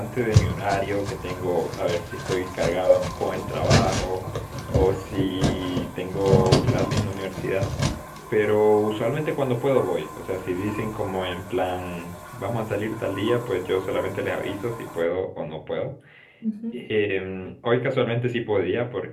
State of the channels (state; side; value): identical; both; correlation 1.00